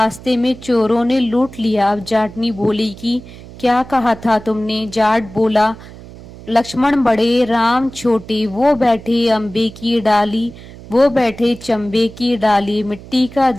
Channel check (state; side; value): noise; right; hum, 17 dB below the sound